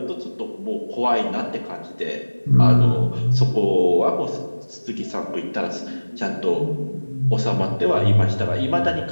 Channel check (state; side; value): inverted; both; correlation -1.00